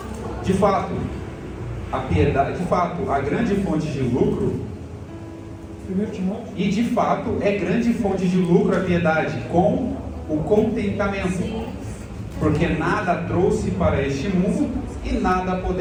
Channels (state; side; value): identical; both; correlation 1.00